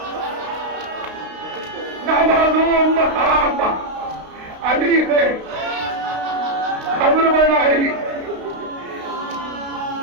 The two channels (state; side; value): late; left; 32 ms